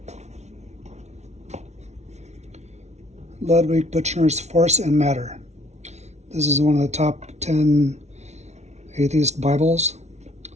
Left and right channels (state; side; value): late; left; 0.32 ms